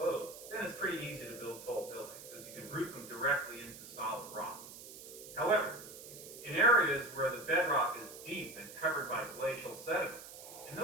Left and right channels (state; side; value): noise; right; hiss, 14 dB below the sound